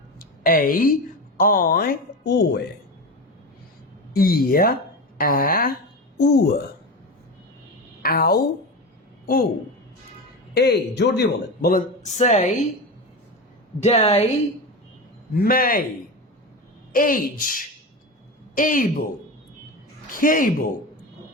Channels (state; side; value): normal; both; correlation 0.23